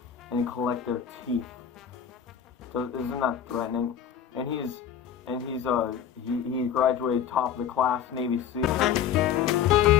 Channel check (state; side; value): quieter; right; 8.6 dB